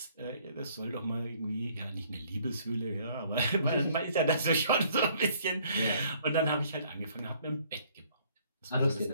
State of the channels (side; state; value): both; inverted; correlation -0.61